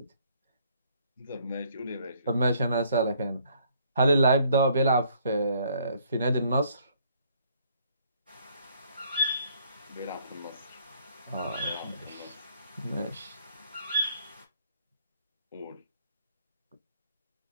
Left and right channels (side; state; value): both; inverted; correlation -0.65